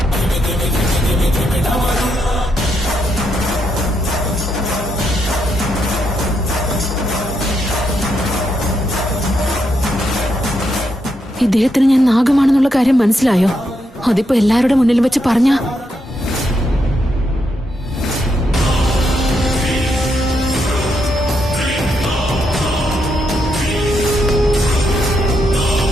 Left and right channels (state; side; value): normal; both; correlation 0.80